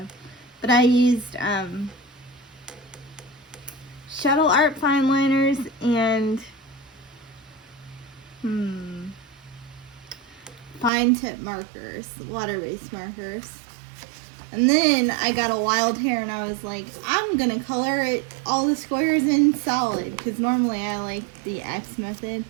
But I used Shuttle Art Fine Liners and fine tip markers, water-based markers. And then I got a wild hair and I was like, I'm gonna color it all the squares in solid, because normally I like the X method.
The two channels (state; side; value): drops out; left; at 10.9 s